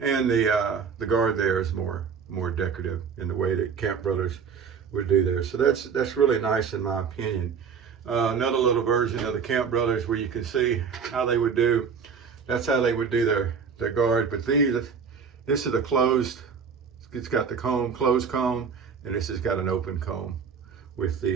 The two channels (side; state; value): left; quieter; 6.3 dB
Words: the guard there is more decorative in the way that Camp Brothers would do there. So that's really nice in my opinion. Another little version of the Camp Brothers where you can see how they would do. That's how they would do their guard. But this is a closed. It's got the comb, closed comb. And this has got an open comb with